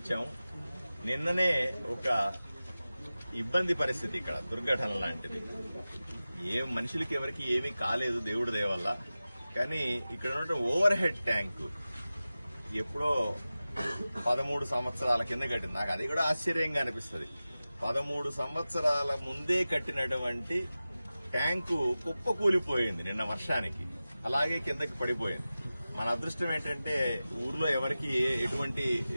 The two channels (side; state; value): both; inverted; correlation -0.96